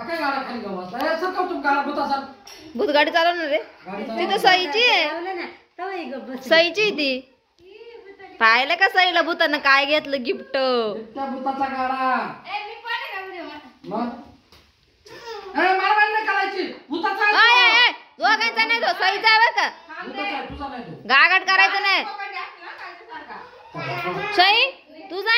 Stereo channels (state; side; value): identical; both; correlation 1.00